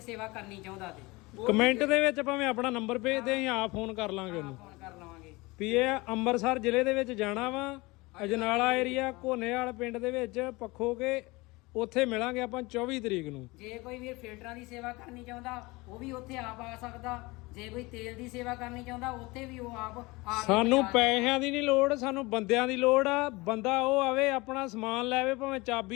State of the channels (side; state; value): right; quieter; 23.4 dB